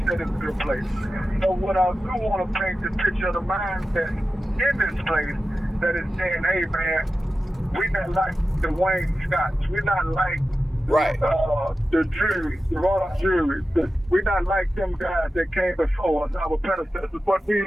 that it's a good place. So what I do want to paint the picture of the mindset in this place that is saying, hey, man, we're not like the Wayne Scotts. We're not like the jury, the royal jury. We're not like them guys that came before us, our predecessors. What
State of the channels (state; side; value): normal; both; correlation 0.93